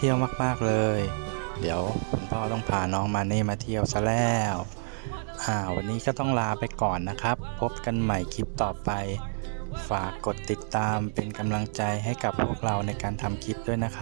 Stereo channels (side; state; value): left; silent; 59 dB below the other